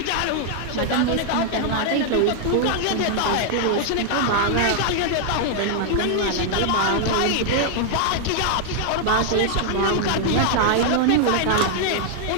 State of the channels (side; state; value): both; different; correlation 0.00